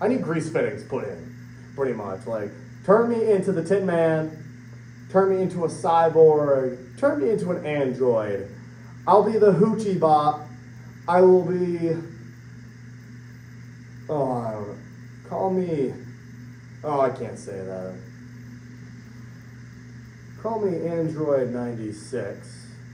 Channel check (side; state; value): both; identical; correlation 1.00